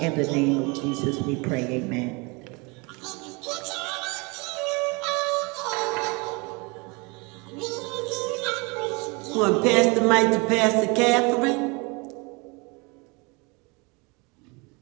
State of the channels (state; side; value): quieter; left; 28.5 dB